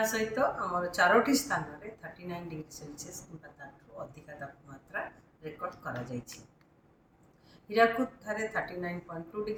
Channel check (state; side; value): identical; both; correlation 1.00